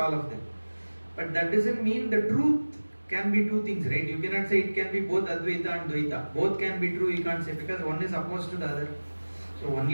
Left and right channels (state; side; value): inverted; both; correlation -1.00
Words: of them. But that doesn't mean the truth can be two things, right? You cannot say it can be both Advaita and Dvaita. Both can be true, you can't say, because one is opposed to the other. So